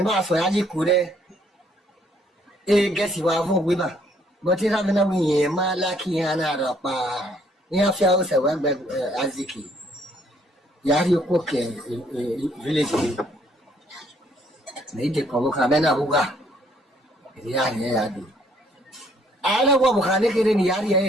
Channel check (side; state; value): both; normal; correlation 0.65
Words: xoay gì cũ đấy cái gì qua vô quý bà mà thì ra bên nào nhiều mà là khi anh ra pa nhà phía sau bên bên Aziki nhà thì có cái village này thì có cái bên nào qua nhà đi ai là qua một cái cái này nhà